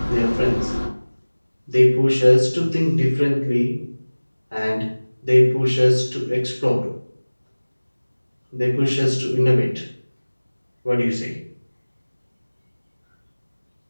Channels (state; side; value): inverted; both; correlation -1.00